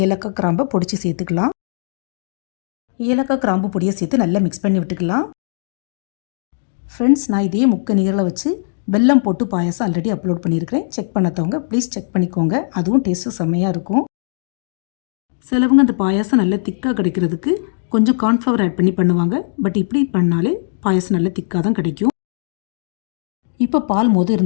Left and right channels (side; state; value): right; silent; digital silence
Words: ஏலக்காய் கிராம்பை பொடிச்சு சேர்த்துக்கலாம். ஏலக்காய் கிராம்பு பொடியை சேர்த்து நல்லா மிக்ஸ் பண்ணி விட்டுக்கலாம். ஃப்ரெண்ட்ஸ், நான் இதே முக்கனிகளை வச்சு வெல்லம் போட்டு பாயாசம் ஆல்ரெடி அப்லோட் பண்ணியிருக்கிறேன். செக் பண்ணாதவங்க ப்ளீஸ் செக் பண்ணிக்கோங்க. அதுவும் டேஸ்ட்டு செம்மையாக இருக்கும். சிலவங்க அந்த பாயாசம் நல்லா திக்காக கிடைக்கிறதுக்கு கொஞ்சம் கார்ன்ஃப்ளவர் ஆட் பண்ணி பண்ணுவாங்க. பட் இப்படி பண்ணாலே பாயாசம் நல்லா திக்காக தான் கிடைக்கும். இப்போ பால்